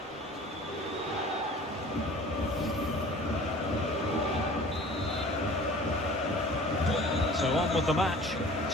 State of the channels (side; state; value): both; normal; correlation 0.45